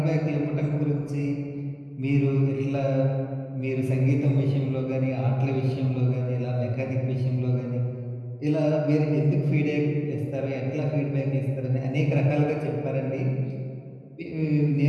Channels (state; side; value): identical; both; correlation 1.00